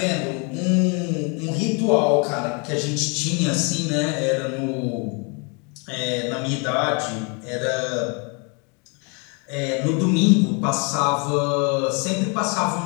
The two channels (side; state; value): right; quieter; 34.0 dB